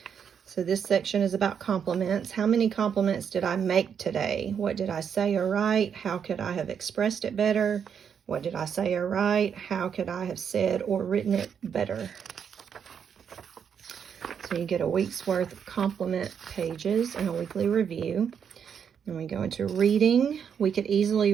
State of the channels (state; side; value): quieter; left; 7.6 dB